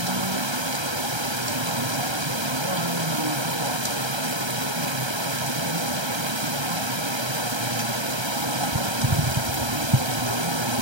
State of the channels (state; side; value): late; left; 1.3 ms